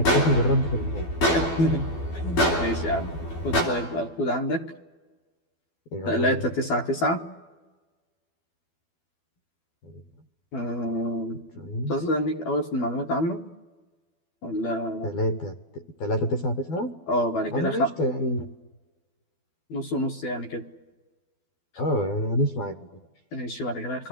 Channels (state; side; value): late; right; 12 ms